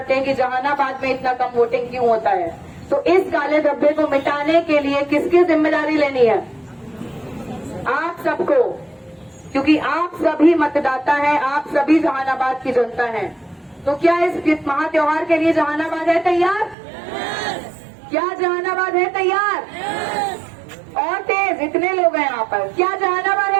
हैं कि जहानाबाद में इतना कम वोटिंग क्यों होता है। तो इस काले धब्बे को मिटाने के लिए किसकी जिम्मेदारी लेनी है? आप सबको, क्योंकि आप सभी मतदाता हैं, आप सभी जहानाबाद की जनता हैं। तो क्या इस महा त्योहार के लिए जहानाबाद है तैयार? क्या जहानाबाद है तैयार? और तेज, इतने लोग हैं यहाँ पर, क्या जहानाबाद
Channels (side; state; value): left; drops out; at 16.8 s